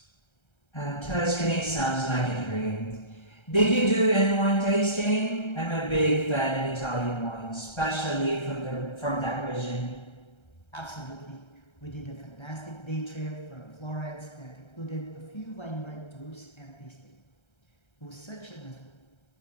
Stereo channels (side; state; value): right; late; 1.3 ms